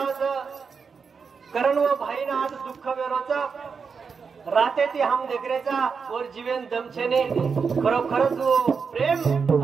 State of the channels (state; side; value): quieter; left; 5.6 dB